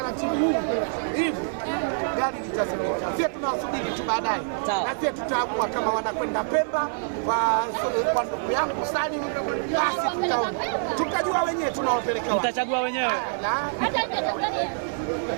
huu hivi gari litazimika. Sisi tunawasubiri tu baadaye, na sisi tutaamua kama wanakwenda Pemba kwa ndugu yangu Salim, basi tutaona, tutajua wenyewe tunawapeleka wapi, mtachagua wenyewe.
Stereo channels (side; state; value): left; silent; digital silence